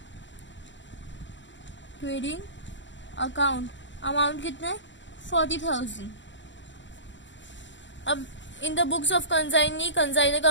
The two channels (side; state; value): right; late; 0.54 ms